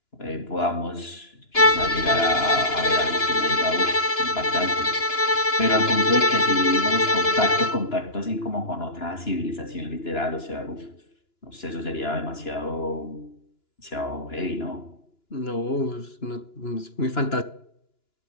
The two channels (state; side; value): late; right; 2.9 ms